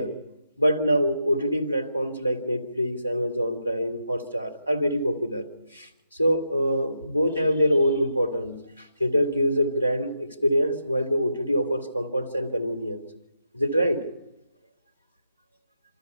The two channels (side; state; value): both; inverted; correlation -0.83